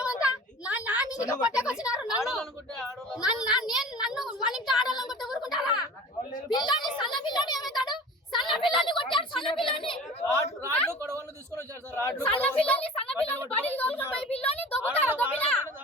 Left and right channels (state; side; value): normal; both; correlation 0.40